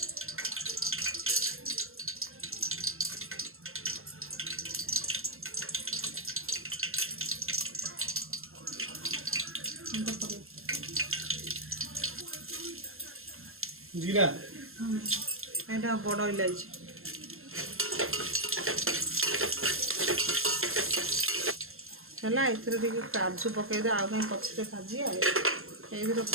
जीरा एटा बड़ इलायची है ए काजू पकईदे आउ कहीं पछे भाजी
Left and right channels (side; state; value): left; late; 0.61 ms